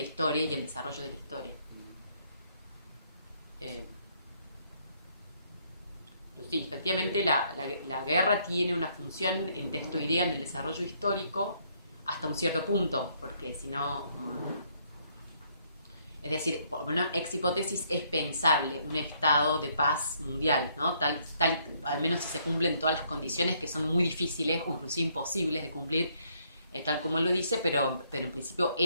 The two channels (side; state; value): both; inverted; correlation -0.69